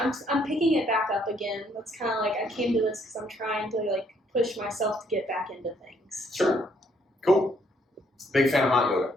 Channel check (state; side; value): normal; both; correlation 0.68